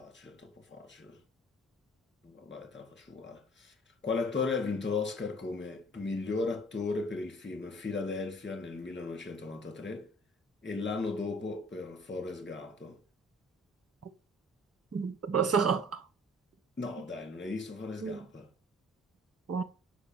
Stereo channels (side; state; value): both; normal; correlation 0.53